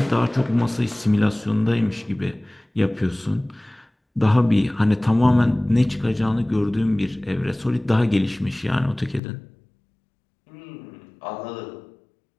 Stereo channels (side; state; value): right; drops out; at 9.2 s